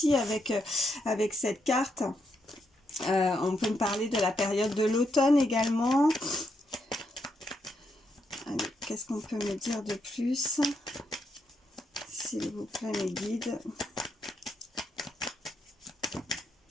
avec cette carte. On peut me parler de la période de l'automne également. Qu'est-ce qu'on peut me dire de plus, s'il vous plaît, mes guides?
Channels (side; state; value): both; normal; correlation 0.80